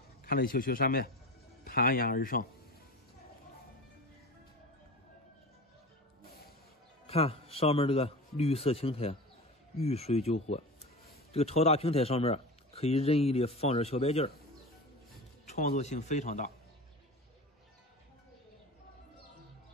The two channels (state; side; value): normal; both; correlation 0.30